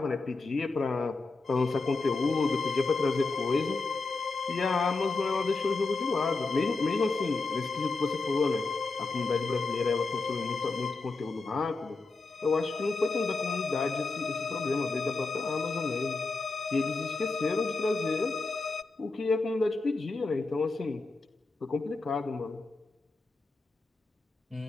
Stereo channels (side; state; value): right; quieter; 3.8 dB